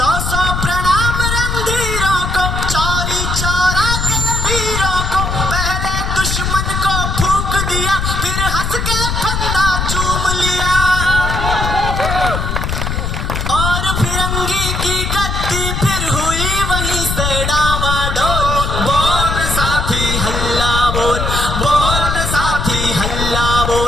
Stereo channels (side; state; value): left; noise; rumble, 2 dB below the sound